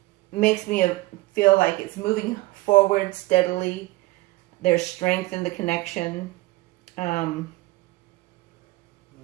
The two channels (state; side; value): quieter; left; 20.1 dB